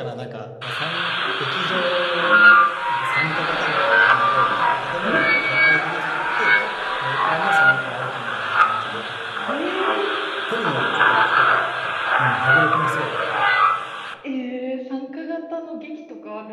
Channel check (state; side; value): identical; both; correlation 1.00